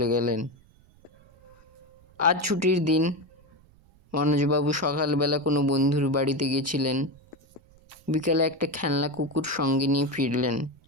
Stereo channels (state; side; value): noise; right; rumble, 29 dB below the sound